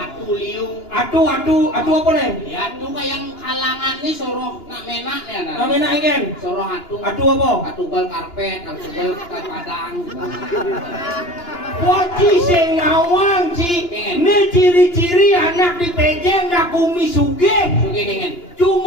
liu. Atu apa nih? Ya atu kayak kalangan nih soro nak mena ya. Nak mena igen. Soro hatu. Atu apa? Atu gol karpet, atu gol padang. Waci sing ngawang ci. Ini ciri-ciri anak di pejeng nak kumi sugih. Sugih dengan.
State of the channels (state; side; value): late; right; 2.9 ms